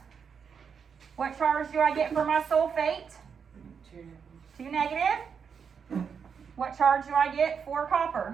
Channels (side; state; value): left; quieter; 6.6 dB